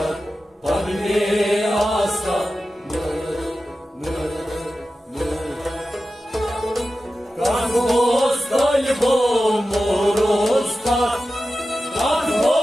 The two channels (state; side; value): normal; both; correlation 0.93